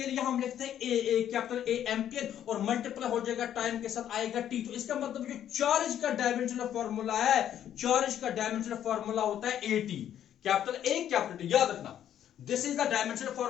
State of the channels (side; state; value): right; quieter; 10.5 dB